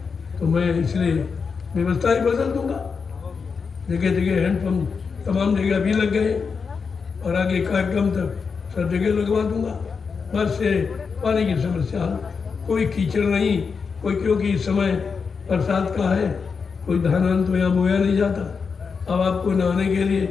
तो मैं इसलिए व्यवस्था ही बदल दूंगा। जगह जगह हैंडपंप तमाम जगह भी लग गए, और आगे कार्यक्रम तक सब जगह लगवा दूंगा। बस से पानी की समस्या, कोई कीचड़ नहीं, कोई, क्योंकि इस समय बरसात का है, कोई धान तो यहाँ बोया नहीं जाता। अब आपको नहाने के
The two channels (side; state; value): right; quieter; 5.5 dB